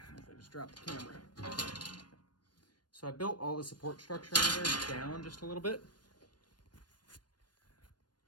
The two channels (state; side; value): late; right; 0.70 ms